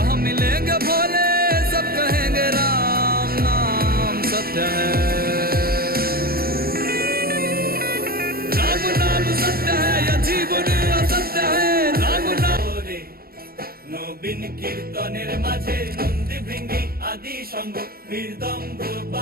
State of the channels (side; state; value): left; late; 0.44 ms